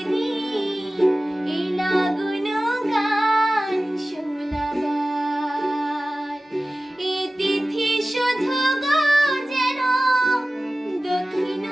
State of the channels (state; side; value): normal; both; correlation 0.96